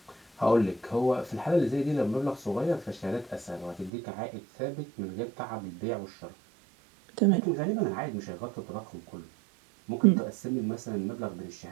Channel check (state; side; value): drops out; left; at 3.9 s